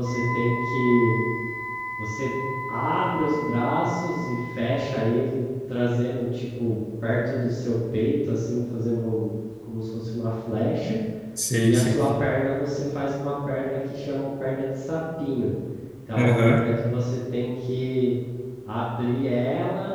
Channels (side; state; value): both; identical; correlation 1.00